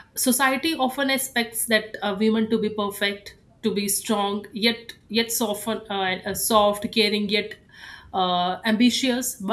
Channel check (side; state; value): both; identical; correlation 1.00